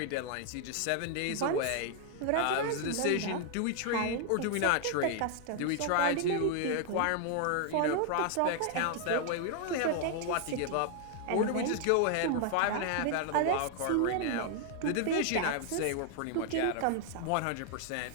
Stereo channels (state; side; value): different; both; correlation 0.00